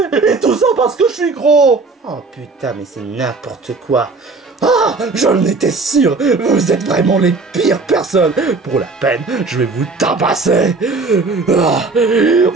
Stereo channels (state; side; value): quieter; left; 3.9 dB